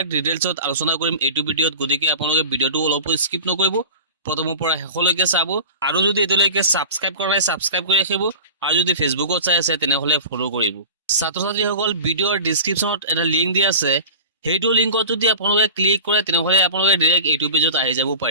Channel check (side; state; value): both; inverted; correlation -0.35